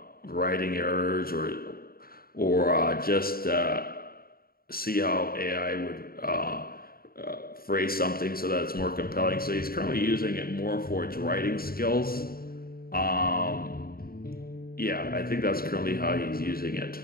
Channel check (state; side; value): late; right; 0.43 ms